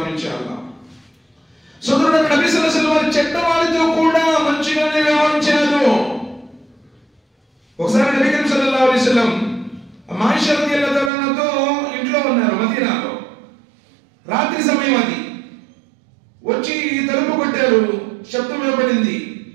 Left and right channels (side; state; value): left; drops out; at 11.1 s